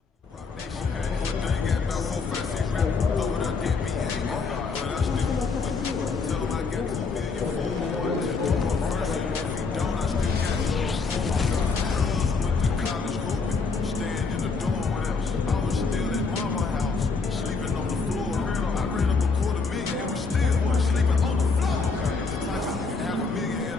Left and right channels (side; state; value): right; quieter; 4.5 dB